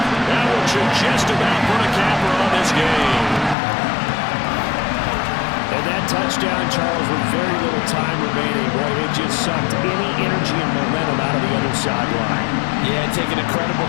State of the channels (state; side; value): drops out; right; at 3.6 s